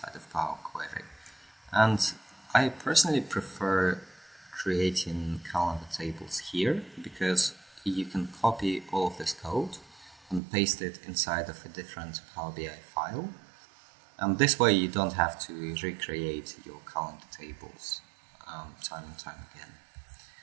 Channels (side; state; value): left; drops out; at 10.4 s